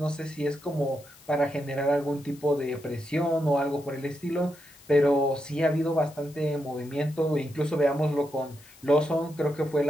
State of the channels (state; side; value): noise; left; hiss, 24 dB below the sound